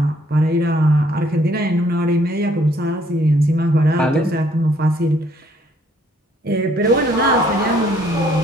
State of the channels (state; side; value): normal; both; correlation 0.65